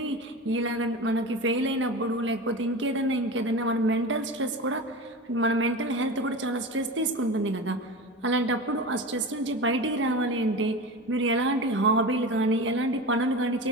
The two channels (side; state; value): both; normal; correlation 0.28